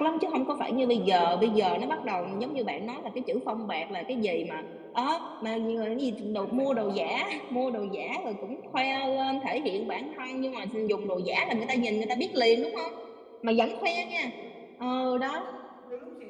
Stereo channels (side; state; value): both; identical; correlation 1.00